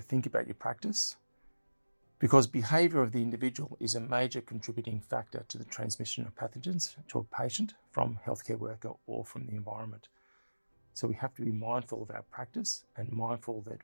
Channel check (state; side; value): inverted; both; correlation -1.00